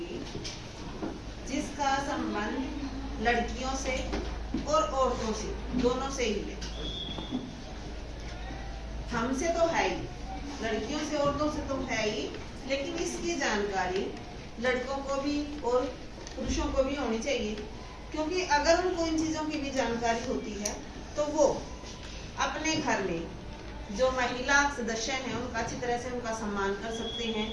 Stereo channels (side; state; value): both; identical; correlation 1.00